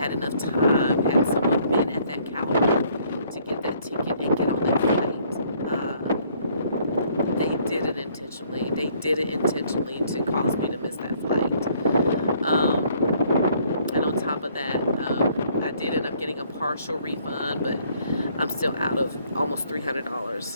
enough time, had someone been at that counter to get that ticket and get on that flight. They did it intentionally. They did it intentionally to cause me to miss that flight. And on top of that, I did end up getting a partial refund, but I'm still out of almost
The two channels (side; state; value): both; inverted; correlation -0.63